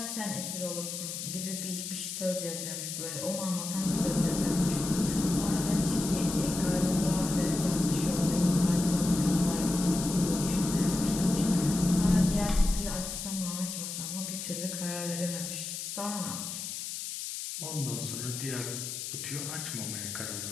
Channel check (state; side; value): noise; left; hiss, 6 dB below the sound